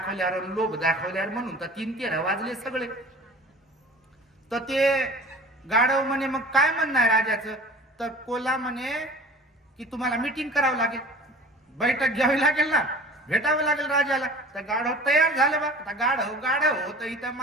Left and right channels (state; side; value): normal; both; correlation 0.43